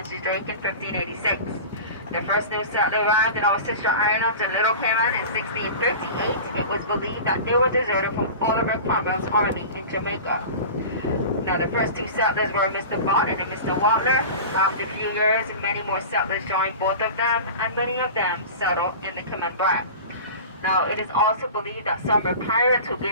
Drake in 1586. The first new settler arrived in our sister islands in Little Cayman in 1658. It was believed that they were deserted from Oliver Cromwell's army in Jamaica. Now, the first two settlers were Mr. Barton and Mr. Watler. After a few years, many more settlers joined both of them, and many of them settled in the Cayman Brac. Now, it is also believed that some were pirates who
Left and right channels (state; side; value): inverted; both; correlation -0.34